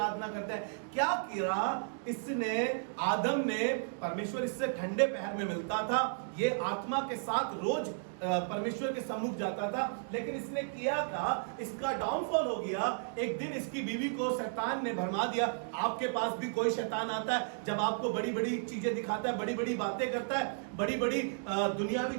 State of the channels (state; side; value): silent; left; digital silence